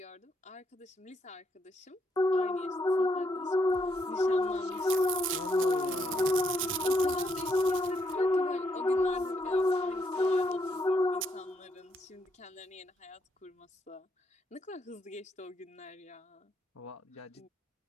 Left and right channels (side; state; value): both; normal; correlation 0.76